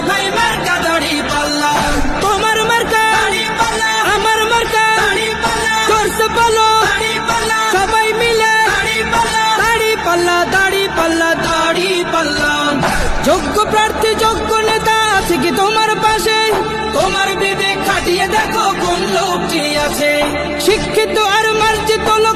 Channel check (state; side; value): identical; both; correlation 1.00